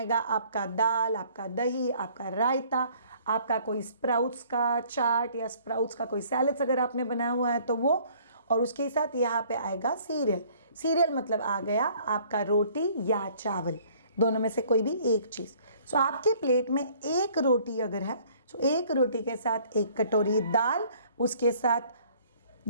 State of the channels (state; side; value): inverted; both; correlation -0.57